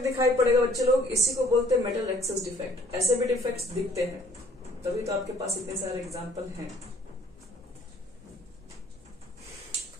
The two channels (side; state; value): both; normal; correlation 0.58